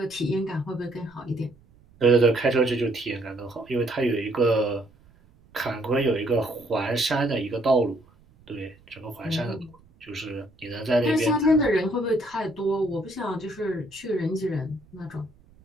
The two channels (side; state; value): right; noise; rumble, 28 dB below the sound